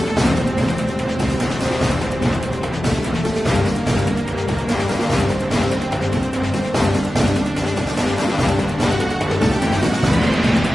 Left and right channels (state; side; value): normal; both; correlation 0.94